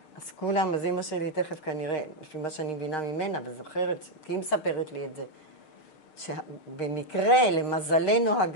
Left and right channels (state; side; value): late; right; 6.5 ms